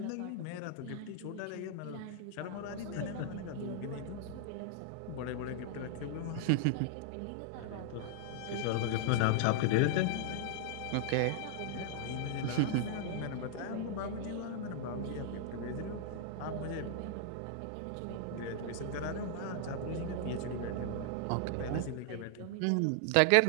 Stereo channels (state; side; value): different; both; correlation 0.00